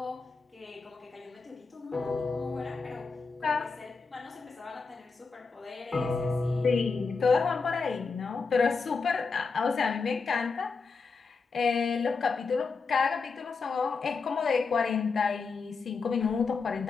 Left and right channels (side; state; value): right; quieter; 4.7 dB